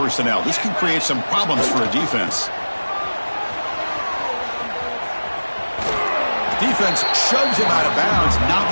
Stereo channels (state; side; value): inverted; both; correlation -1.00